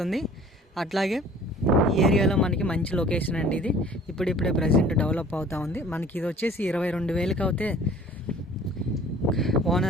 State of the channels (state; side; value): normal; both; correlation 0.50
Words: అట్లాగే ఈ ఏరియాలో మనకి మంచి లొకేషన్ అండి. ఇది ఇప్పుడిప్పుడే ప్రజెంట్ డెవలప్ అవుతూ ఉంది. మనకి ఇది వచ్చేసి 22,000కి అయితే